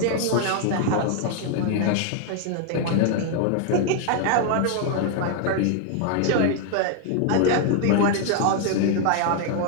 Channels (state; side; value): different; both; correlation 0.00